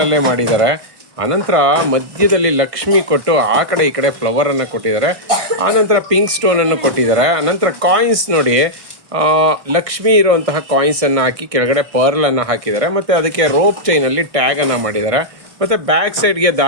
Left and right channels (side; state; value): left; late; 1.6 ms